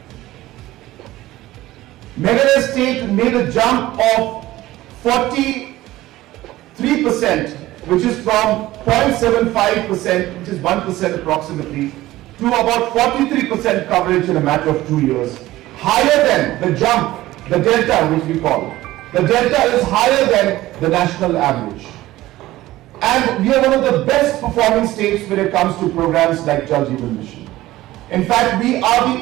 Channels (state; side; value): quieter; left; 16.4 dB